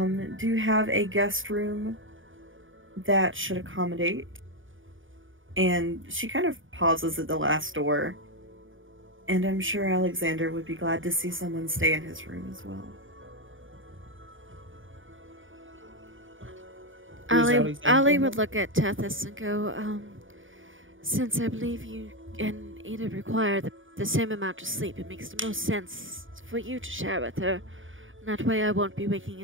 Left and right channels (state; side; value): late; left; 0.57 ms